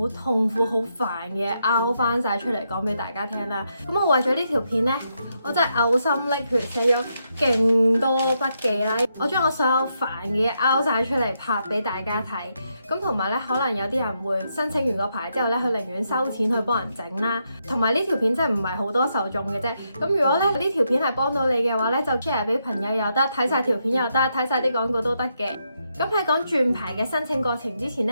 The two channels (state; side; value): inverted; both; correlation -0.80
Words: 痛苦、好煩嘅嘢拗翻晒出嚟講俾大家聽啦。咁我為咗呢條片咧，我真係嘔心瀝血寫咗勁多筆記啦。我將我所有煩嘅嘢拗晒出嚟拍俾大家睇。咁同埋咧，可能有啲人會申請完個牌之後咧，佢寧願收錢去幫人整啦。同埋呢條片真係唔係好多受眾嘅啫。咁如果咧呢條片係幫到你嘅話咧，就 share 俾朋友又得，睇晒條片又得，睇晒啲廣告都得嘅。咁喺講轉牌嘅申請過程之前